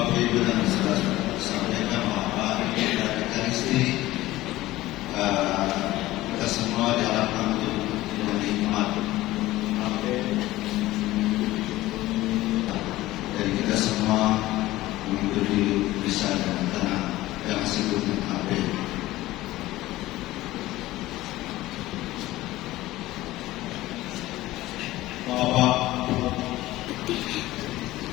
Ibu dan saudara sampaikan bahwa hari ini dari Ekaristi kita semua diharapkan untuk menikmat dan kita semua mengikuti bisa dengan tenang yang disebut AB. Bapak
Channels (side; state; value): right; quieter; 16.9 dB